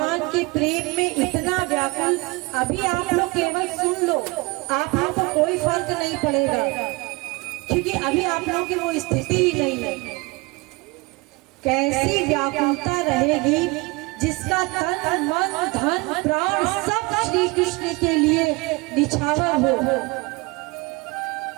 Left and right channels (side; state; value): left; quieter; 25.1 dB